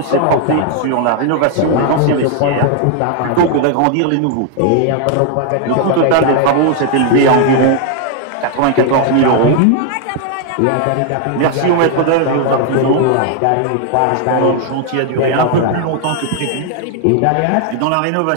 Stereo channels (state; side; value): different; both; correlation 0.00